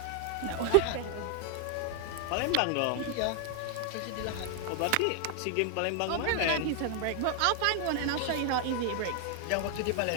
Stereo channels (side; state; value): both; different; correlation 0.00